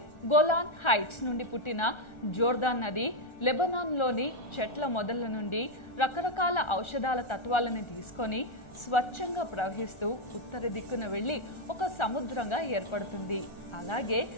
గోలాన్ హైట్స్ నుండి పుట్టిన జోర్దాన్ నది లెబనాన్లోని చెట్ల మొదళ్ల నుండి రకరకాల ఔషధాల తత్వాలను తీసుకొని స్వచ్ఛంగా ప్రవహిస్తూ ఉత్తర దిక్కున వెళ్లి ఒక సముద్రంగా ఏర్పడుతుంది. అలాగే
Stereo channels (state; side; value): late; right; 1.4 ms